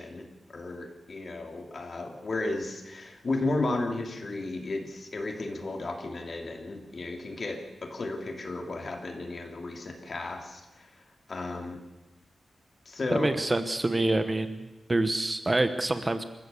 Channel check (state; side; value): normal; both; correlation 0.94